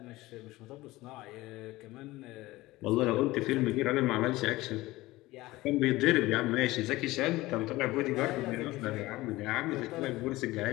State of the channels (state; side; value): quieter; right; 18.8 dB